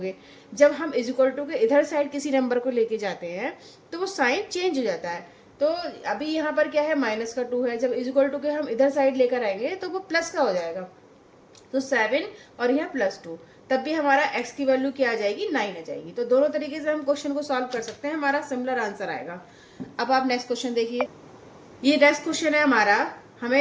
जब हम इज इक्वल टू के इधर साइड किसी नंबर को लेके जाते हैं तो वो साइन चेंज हो जाता है। तो अभी यहाँ पर क्या है, -2 है, जब इज इक्वल टू के हम इधर साइड लेकर आएंगे तो वो प्लस का हो जाएगा। तो 7 और यहाँ +2, तब भी हमारा x की वैल्यू क्या आ जाएगी, 9 आ जाएगी। तो दोनों तरीके से हम क्वेश्चन को सॉल्व कर सकते हैं, हमारा सिमिलर आंसर आएगा। अब आप नेक्स्ट क्वेश्चन देखिए। ये नेक्स्ट क्वेश्चन है हमारा,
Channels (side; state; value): both; identical; correlation 1.00